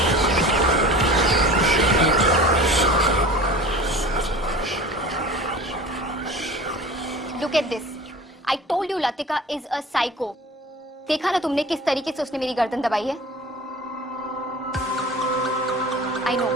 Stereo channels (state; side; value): normal; both; correlation 0.39